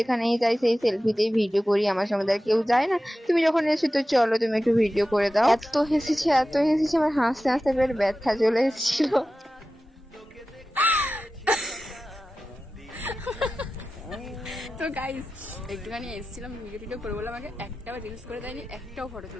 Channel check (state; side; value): normal; both; correlation 0.94